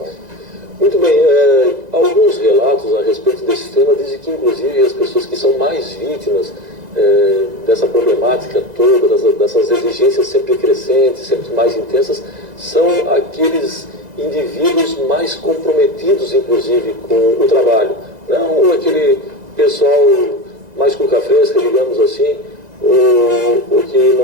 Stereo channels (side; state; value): left; late; 2.0 ms